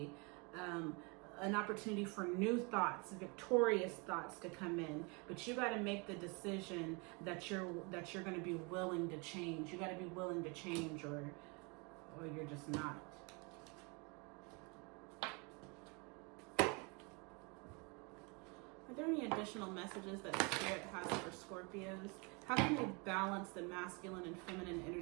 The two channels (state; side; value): quieter; left; 31.0 dB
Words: an opportunity for new thoughts, victorious thoughts to come in. But you got to make the decision that you're going to be willing to change. You got to be willing to change, or you're just not. Are there any additional messages that Spirit has for Scorpios? How can they balance the masculine and feminine